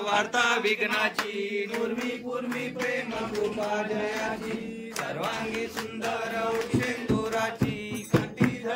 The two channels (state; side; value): identical; both; correlation 1.00